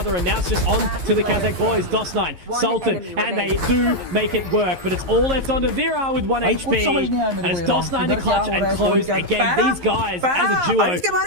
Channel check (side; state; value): left; late; 11 ms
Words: and now it's just on to the Kazakh boys, DOS9, Sultan, and they do make it work, but it's all left onto Vera with 1 HP, and it's DOS9 to clutch and close again. These guys, as a duo,